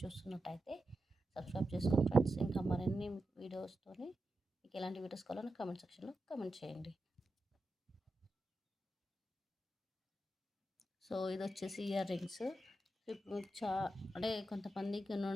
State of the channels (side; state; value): both; normal; correlation 0.89